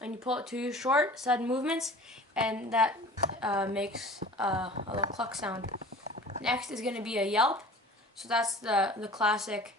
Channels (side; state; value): both; normal; correlation 0.42